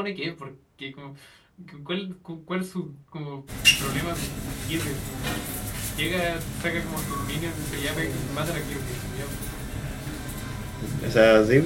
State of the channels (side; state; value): both; identical; correlation 1.00